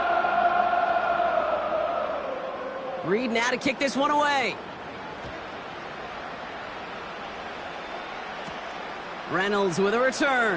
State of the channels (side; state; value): both; identical; correlation 1.00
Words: Reed now to kick this one away. Reynolds with a